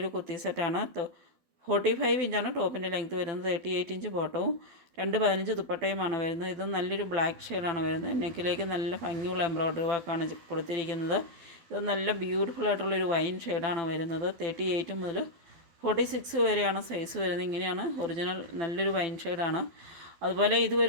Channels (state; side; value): late; left; 12 ms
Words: കുർത്തി സെറ്റാണ്. 45 ഇഞ്ചാണ് ടോപ്പിൻ്റെ ലെങ്ത്ത് വരുന്നത്. 38 ഇഞ്ച് ബോട്ടവും 215 ദുപ്പട്ടയുമാണ് വരുന്നത്. ഇത് നല്ലൊരു ബ്ലാക്ക് ഷെയ്ഡാണ് വരുന്നത്. നെക്കിലേക്ക് നല്ല ഭംഗിയുള്ള എംബ്രോയ്ഡറി വർക്കാണ് കൊടുത്തിരിക്കുന്നത്. ഇത് നല്ല ബ്യൂട്ടിഫുൾ ആയിട്ടുള്ളൊരു വൈൻ ഷെയ്ഡാണ് വരുന്നത്. 38 മുതൽ 46 വരെയാണ് സൈസ് വരുന്നത്. ഇങ്ങനെയാണ് ഒറിജിനൽ നല്ലൊരു വൈൻ ഷെയ്ഡാണ്. അതുപോലെ ഇത്